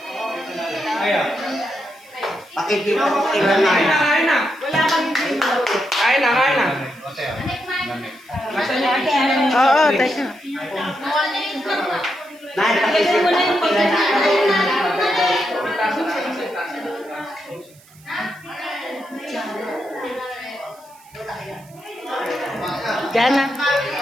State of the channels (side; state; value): right; noise; hiss, 27 dB below the sound